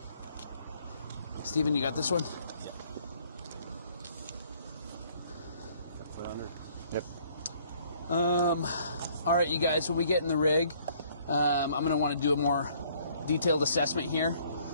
Steven, you got this one? Foot under. Yep. All right, you guys, when we get in the rig, I'm going to want to do a more detailed assessment here.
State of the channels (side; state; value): both; inverted; correlation -0.61